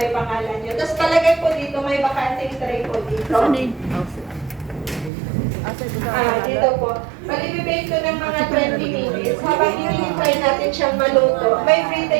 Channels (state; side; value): drops out; left; at 5.1 s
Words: pangalan nyo. Tapos palagay po dito, may bakanting tray po dito. Dito po. Malibibake ko ng mga 20 minutes. Habang hinihintay natin siyang maluto, may free